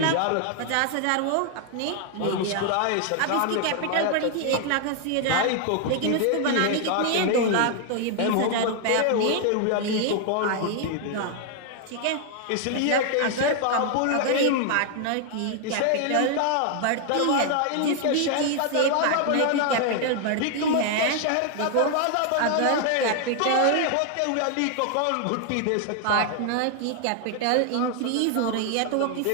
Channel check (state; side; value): different; both; correlation 0.00